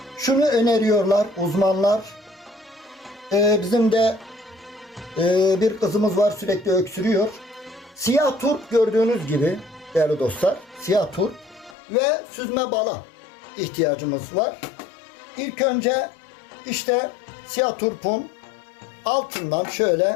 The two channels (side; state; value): right; drops out; at 11.8 s